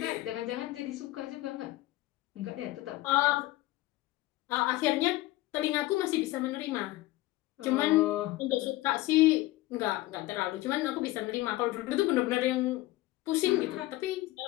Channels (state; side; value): quieter; right; 17.8 dB